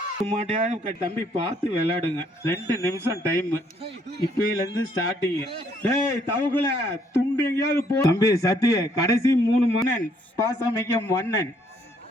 மாட்டையாவது தம்பி பார்த்து விளையாடுங்க. 2 நிமிஷம் டைம் இப்பையில இருந்து ஸ்டார்டிங். டேய் தவக்குல துண்டு எங்கேயாவது போ தம்பி. சத்திய கடைசி 3 மன்னன் பாசமிக்க மன்னன்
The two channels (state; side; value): normal; both; correlation 0.67